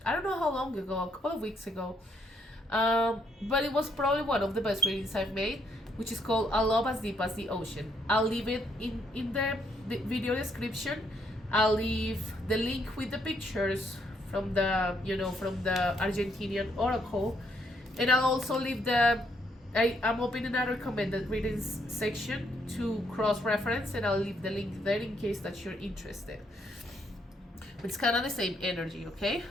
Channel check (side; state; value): both; normal; correlation 0.72